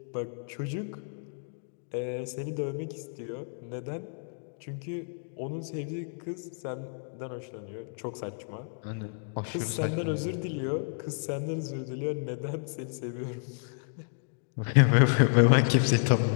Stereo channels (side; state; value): right; silent; 57 dB below the other